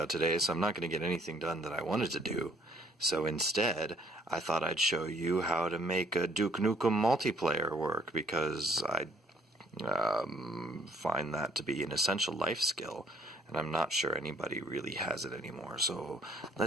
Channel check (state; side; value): normal; both; correlation 0.62